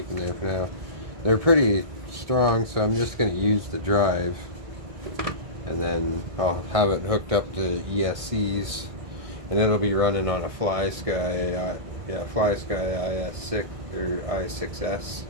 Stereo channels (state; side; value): late; left; 1.6 ms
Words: in there for now. They're pretty strong, so I'm just going to use the drive. And then I'll have it hooked up to ESCs. And it'll be running on a FlySky, FlySky IS6 or i6S.